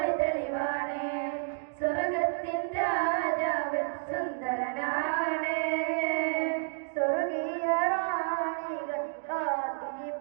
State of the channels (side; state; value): left; silent; digital silence